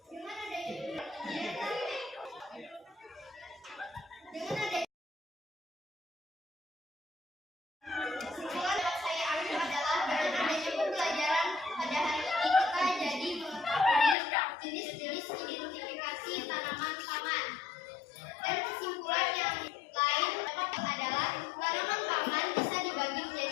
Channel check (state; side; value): drops out; right; at 14.2 s